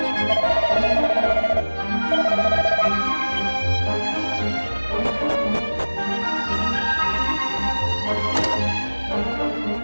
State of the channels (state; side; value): inverted; both; correlation -1.00